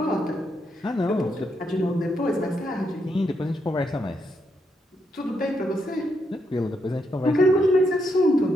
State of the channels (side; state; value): both; normal; correlation 0.79